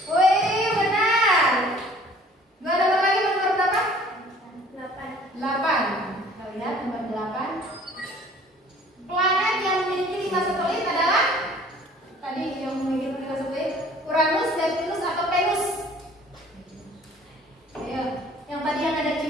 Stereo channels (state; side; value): normal; both; correlation 0.52